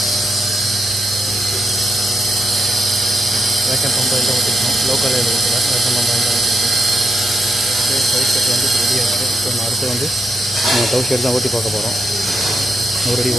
Vacuum pump எல்லாம் ஓட்டிருக்கோம். லோக்கல் ஓட்டல வேக்கம் பம்பு எல்லாம் ஓட்டிருக்கோம். கவு செட் வந்து ரெடியாக இருக்குது. இப்போ நம்ம அடுத்து வந்து நம்ம கவு செட் தான் ஓட்டி பார்க்க போகிறோம். 100 அடி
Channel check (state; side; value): normal; both; correlation 0.82